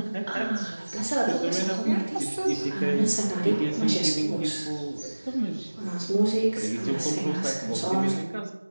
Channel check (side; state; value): both; inverted; correlation -1.00